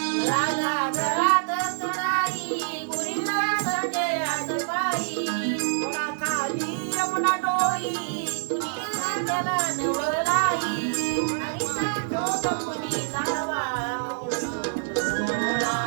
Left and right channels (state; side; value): silent; left; 61 dB below the other